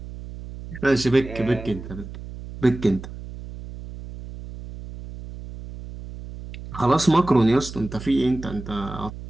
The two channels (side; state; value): right; noise; hum, 12 dB below the sound